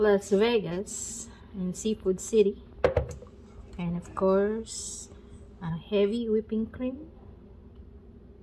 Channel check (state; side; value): identical; both; correlation 1.00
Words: Vegas, in Seafood City. And of course, a heavy whipping cream.